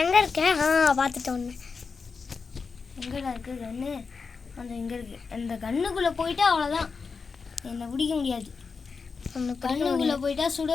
எங்கே இருக்க? பார்த்துட்டு ஒன்று எங்கடா இருக்குது கண்ணு? அந்த இங்கே இருக்குது. அந்த கண்ணுக்குள்ளே போயிட்டா அவ்வளோதான், என்னை பிடிக்க முடியாது. கண்ணுக்குள்ளே போயிட்டா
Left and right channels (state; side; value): quieter; right; 5.0 dB